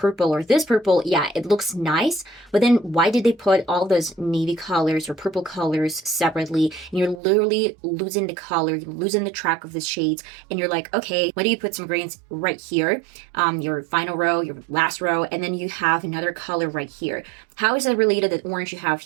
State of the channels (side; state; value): left; drops out; at 7.2 s